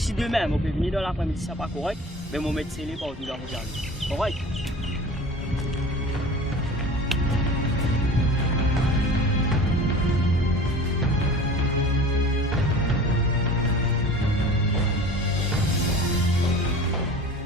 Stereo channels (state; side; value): normal; both; correlation 0.40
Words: demain, vous pouvez venir dans l'après-midi, ça n'est pas correct, mais vous mettez scellé par tout dans vos jardins. Correct?